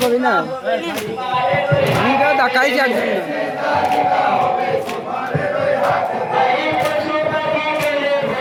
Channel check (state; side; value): identical; both; correlation 1.00